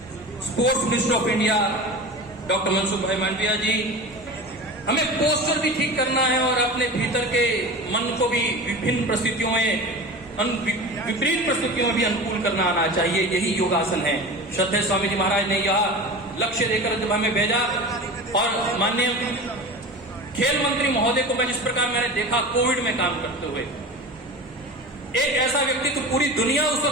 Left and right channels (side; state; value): both; normal; correlation 0.32